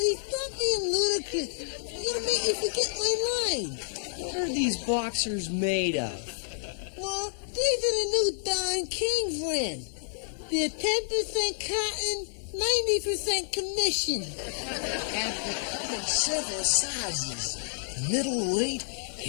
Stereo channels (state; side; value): silent; right; digital silence